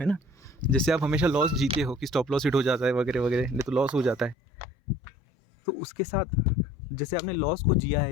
ना, जैसे आप हमेशा लॉस जीते हो कि स्टॉप लॉस हिट हो जाता है वगैरह वगैरह, नहीं तो लॉस हो जाता है, तो उसके साथ जैसे आपने लॉस को जिया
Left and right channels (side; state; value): right; drops out; at 4.4 s